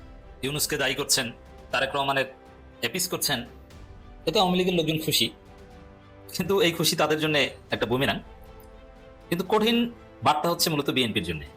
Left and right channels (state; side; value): identical; both; correlation 1.00